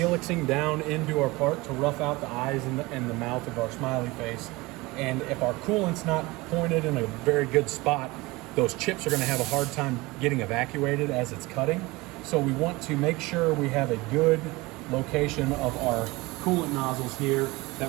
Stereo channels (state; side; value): quieter; left; 22.3 dB